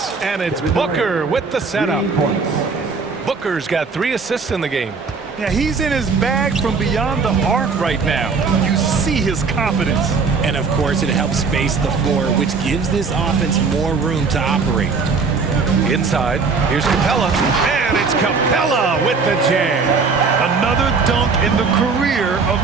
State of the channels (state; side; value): quieter; left; 4.8 dB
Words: And it's Booker with the setup. Booker's got 3 assists in the game. Yeah, he's in his bag from beyond the arc right now. You see his confidence. And of course, it helps space the floor, which gives this offense more room to operate. Inside, here's Capella. And it's Capella with the jam. Another dunk in the career of